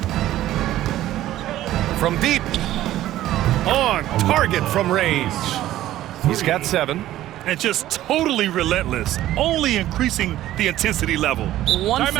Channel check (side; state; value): left; quieter; 14.0 dB